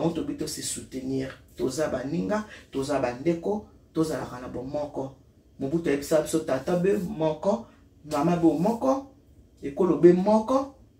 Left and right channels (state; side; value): identical; both; correlation 1.00